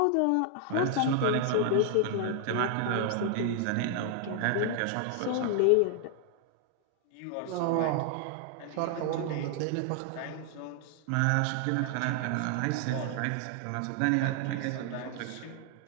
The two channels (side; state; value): both; different; correlation 0.00